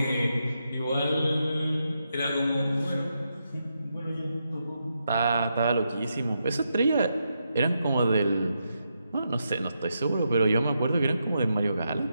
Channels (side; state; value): both; inverted; correlation -0.83